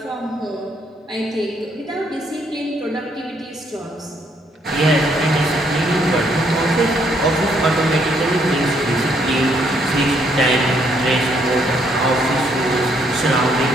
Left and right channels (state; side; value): normal; both; correlation 0.70